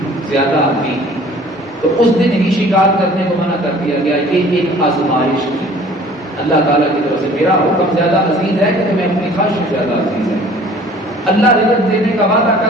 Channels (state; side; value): normal; both; correlation 0.50